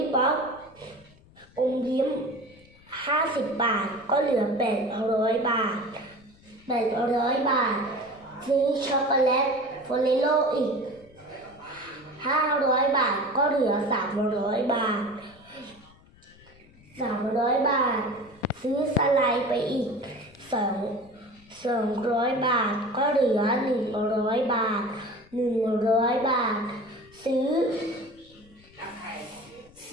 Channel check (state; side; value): noise; left; rumble, 26 dB below the sound